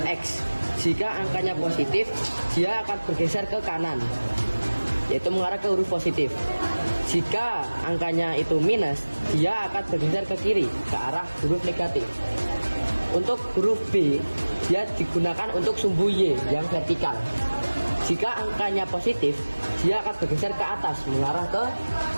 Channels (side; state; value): both; inverted; correlation -1.00